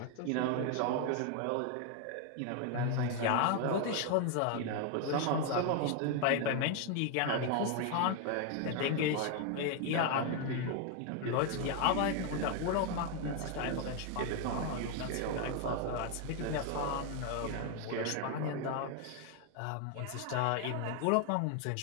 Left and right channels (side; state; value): both; different; correlation 0.01